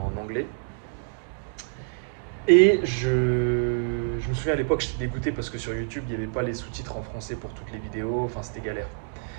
anglais. Et je me souviens à l'époque, j'étais dégoûté parce que sur YouTube, il n'y avait pas les sous-titres en français pour toutes les vidéos, enfin, c'était galère.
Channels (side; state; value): left; silent; digital silence